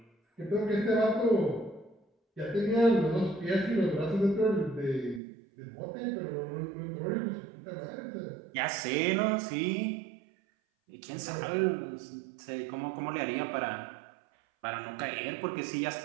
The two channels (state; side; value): drops out; left; at 5.2 s